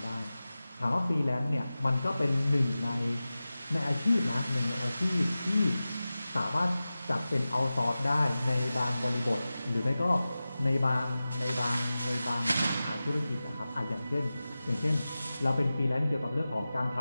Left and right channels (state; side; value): inverted; both; correlation -0.96